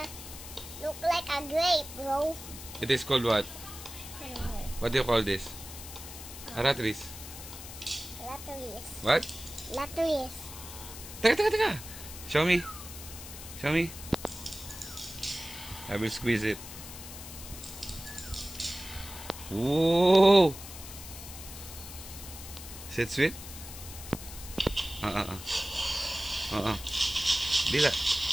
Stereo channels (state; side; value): noise; left; hiss, 12 dB below the sound